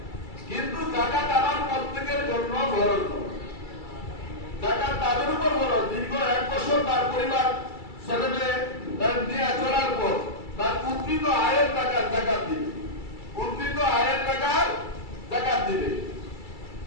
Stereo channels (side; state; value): right; late; 2.3 ms